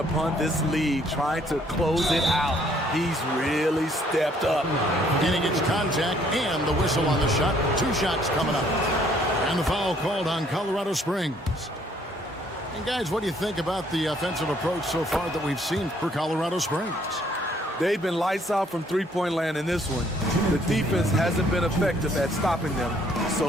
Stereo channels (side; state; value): both; normal; correlation 0.64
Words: this lead, trying to close it out. He's really stepped up. And he gets contact and the whistle on the shot. 2 shots coming up. And the foul called on Colorado Springs. And guys, what do you think about the offensive approach so far that we've seen for Colorado Springs? They've been lights out from three-point land in this one. The defense hasn't been effective at stopping them,